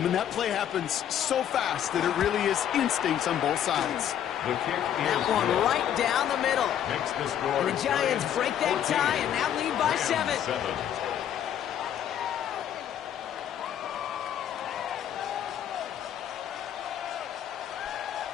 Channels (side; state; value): right; quieter; 10.1 dB